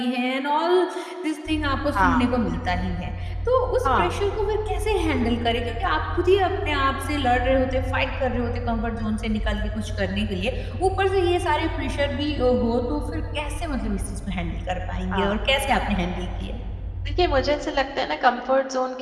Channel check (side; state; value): both; identical; correlation 1.00